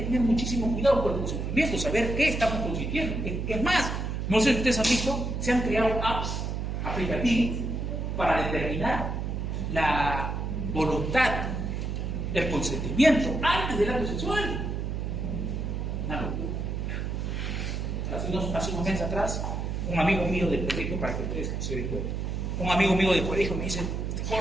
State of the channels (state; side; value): noise; right; hum, 2 dB below the sound